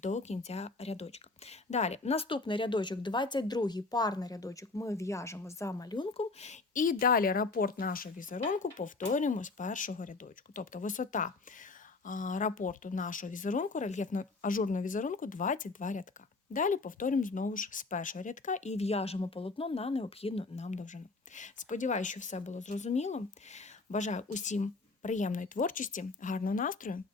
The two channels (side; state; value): right; quieter; 3.7 dB